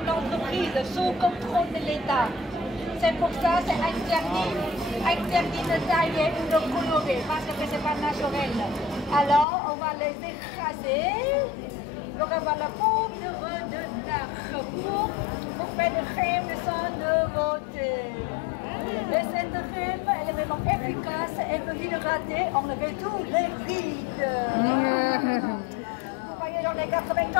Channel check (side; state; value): right; drops out; at 9.5 s